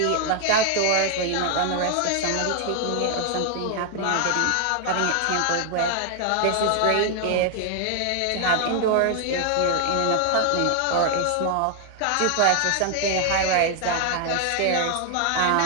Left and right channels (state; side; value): different; both; correlation 0.00